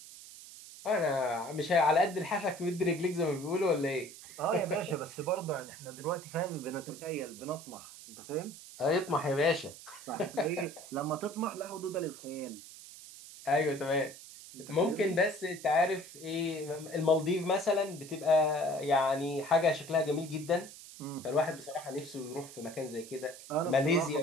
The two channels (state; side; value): noise; right; hiss, 16 dB below the sound